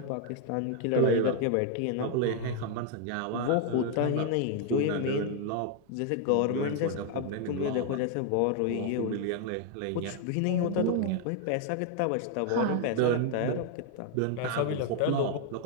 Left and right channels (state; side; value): different; both; correlation 0.00